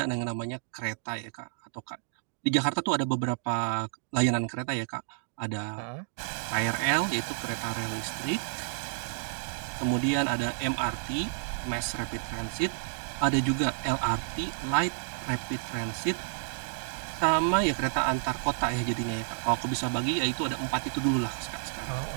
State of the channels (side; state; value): left; silent; digital silence